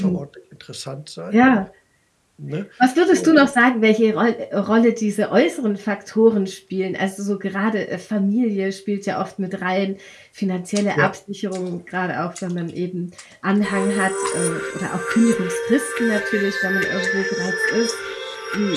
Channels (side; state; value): both; identical; correlation 1.00